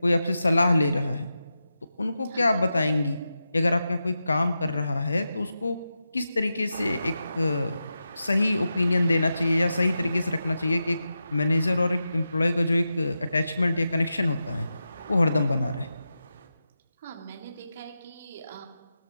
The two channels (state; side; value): inverted; both; correlation -0.90